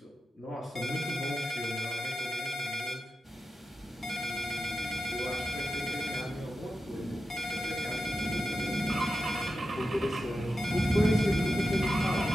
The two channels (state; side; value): normal; both; correlation 0.90